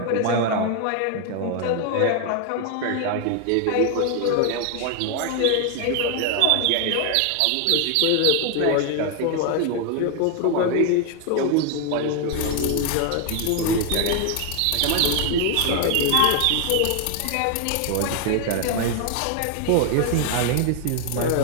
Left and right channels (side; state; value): both; different; correlation 0.01